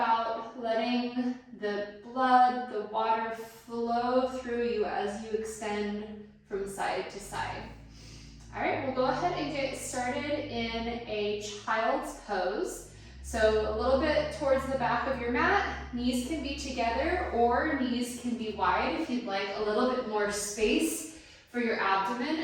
letting the blood, the water flow through you as you extend from side to side. All right, we'll go ahead and get started in a child's pose. So a little bit towards the back of your mat, knees can be together or knees can be wide if you'd like a little bit more space for your abdomen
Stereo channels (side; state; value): both; identical; correlation 1.00